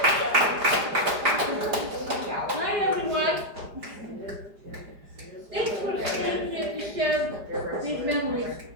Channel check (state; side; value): late; left; 5.0 ms